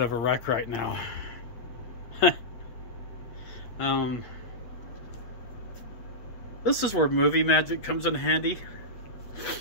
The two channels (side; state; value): right; late; 8.2 ms